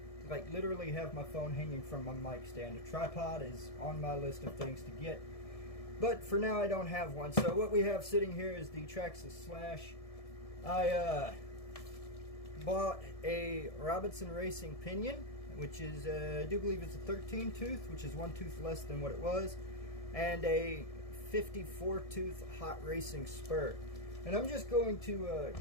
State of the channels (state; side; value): late; right; 1.7 ms